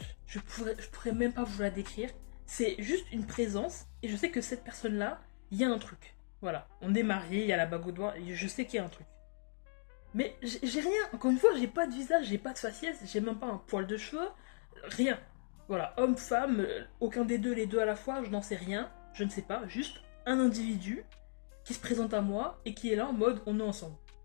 Je pourrais même pas vous la décrire. C'est juste une présence, et je sais que cette personne-là, il y a un truc. Voilà. On est mariés, il y a la bague au doigt, et je sais qu'il y a un truc. Mais j'ai rien. Encore une fois, j'ai pas de visage, j'ai pas de faciès, j'ai même pas un poil de cheveux, rien. Voilà, homme, femme, aucun des deux, les deux à la fois, je n'en sais rien, je ne sais pas, juste un individu qui se présente à moi et qui est là en mode on est ensemble.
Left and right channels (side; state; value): right; silent; digital silence